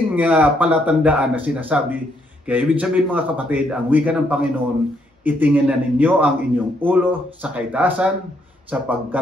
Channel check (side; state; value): both; normal; correlation 0.73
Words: palatandaan na sinasabi. Kaya ibig sabihin mga kapatid, ang wika ng Panginoon, itingin na ninyo ang inyong ulo sa kaitaasan